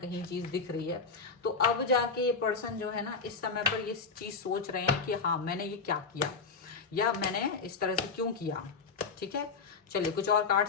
चीज दिख रही है। तो अब जाके ये पर्सन जो है ना, इस समय पर ये चीज सोच रहे हैं कि हाँ, मैंने ये क्या किया, या मैंने इस तरह से क्यों किया। ठीक है, चलिए कुछ और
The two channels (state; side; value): quieter; right; 4.8 dB